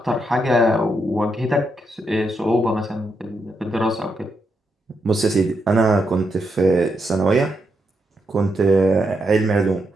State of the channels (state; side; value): normal; both; correlation 0.82